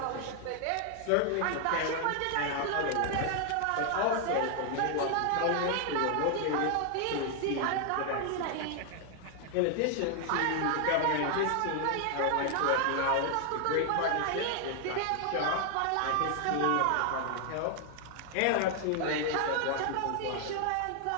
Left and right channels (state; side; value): different; both; correlation 0.00